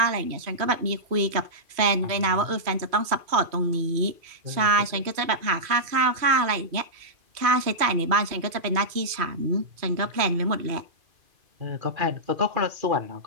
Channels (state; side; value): late; left; 2.5 ms